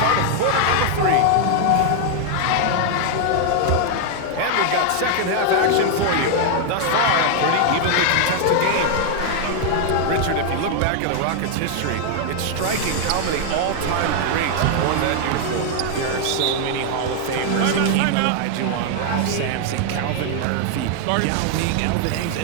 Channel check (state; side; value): different; both; correlation 0.00